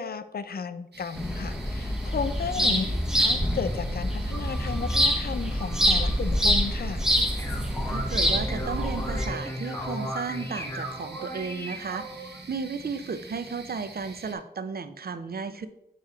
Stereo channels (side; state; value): both; normal; correlation 0.62